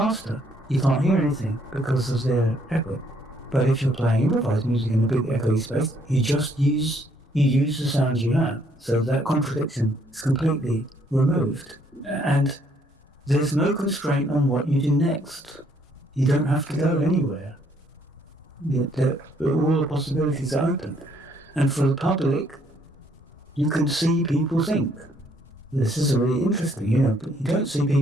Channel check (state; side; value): normal; both; correlation 0.67